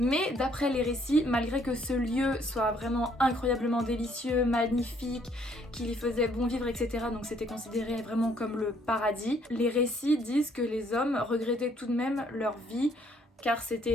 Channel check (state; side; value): normal; both; correlation 0.65